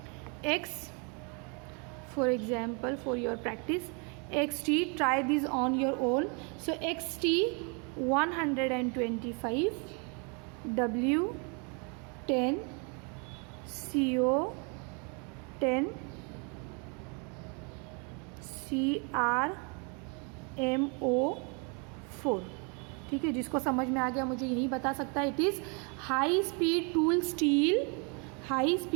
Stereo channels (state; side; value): quieter; left; 35.0 dB